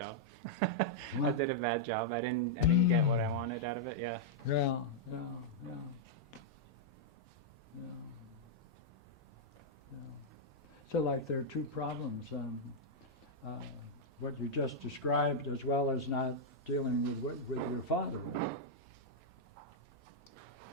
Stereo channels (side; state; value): both; normal; correlation -0.05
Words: I did a bad job. I didn't get what I wanted out of it. Yeah. Yeah. So, like, there are two problems. What you just described, as well as not dealing with your father.